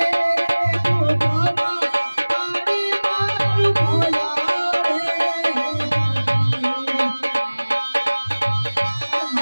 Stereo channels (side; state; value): both; inverted; correlation -1.00